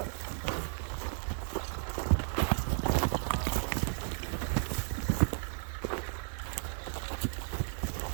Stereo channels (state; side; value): silent; left; 55 dB below the other